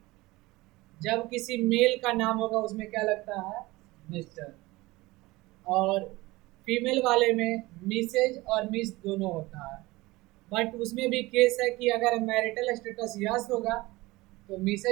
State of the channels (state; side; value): quieter; left; 20.7 dB